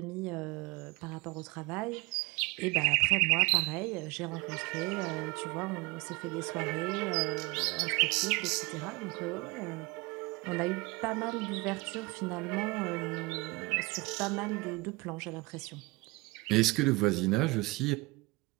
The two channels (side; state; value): left; quieter; 24.0 dB